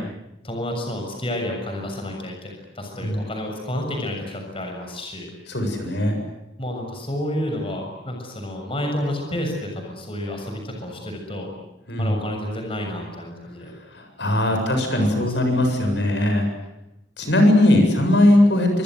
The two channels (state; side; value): normal; both; correlation 0.73